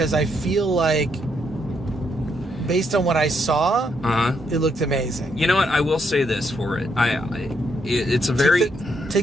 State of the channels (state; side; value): normal; both; correlation 0.76